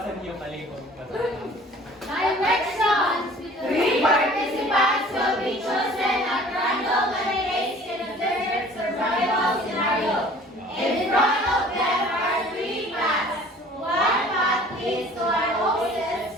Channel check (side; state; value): both; normal; correlation 0.49